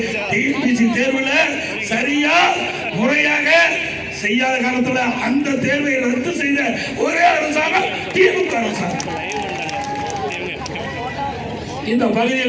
டிஎன்பிசி தேர்வுல சரியா முறையாக செய்யாத காலத்துல அந்த தேர்வை ரத்து செய்த ஒரே அரசாங்கம் திமுக அரசாங்கம். இந்த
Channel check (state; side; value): identical; both; correlation 1.00